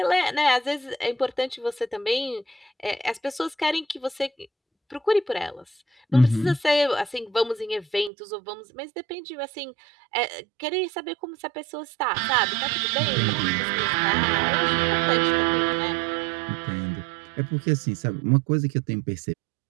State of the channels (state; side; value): drops out; left; at 8.1 s